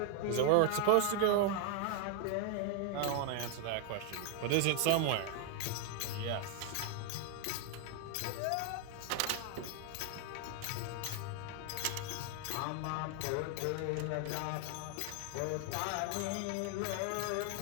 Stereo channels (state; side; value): different; both; correlation 0.00